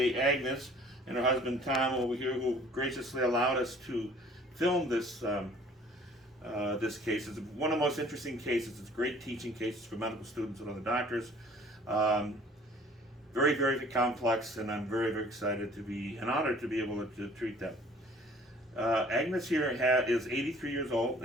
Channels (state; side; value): normal; both; correlation 0.53